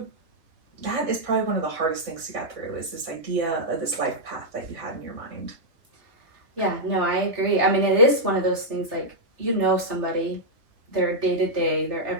that is probably one of the hardest things to get through, is this idea of this life path that you had in your mind. Yeah, no, I agree. I mean, it is one of those things, like, you know somebody, their day to day, their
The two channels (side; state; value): left; late; 3.3 ms